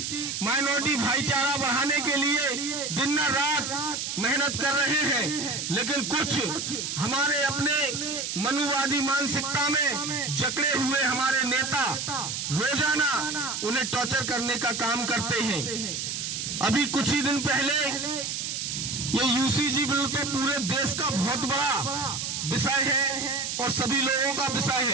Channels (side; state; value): right; noise; hiss, 3 dB below the sound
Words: माइनॉरिटी भाईचारा बढ़ाने के लिए दिन रात मेहनत कर रहे हैं। लेकिन कुछ हमारे अपने मनुवादी मानसिकता में जकड़े हुए हमारे नेता रोजाना उन्हें टॉर्चर करने का काम करते हैं। अभी कुछ ही दिन पहले ये यूसीजी बिल तो पूरे देश का बहुत बड़ा विषय है और सभी लोगों का विषय